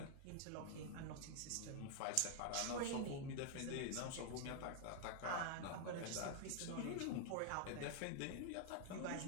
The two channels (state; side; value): different; both; correlation 0.00